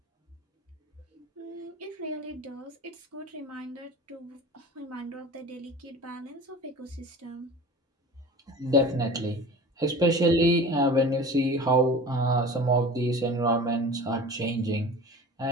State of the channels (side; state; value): both; normal; correlation 0.38